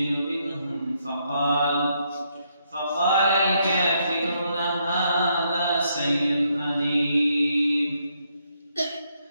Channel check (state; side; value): inverted; both; correlation -0.75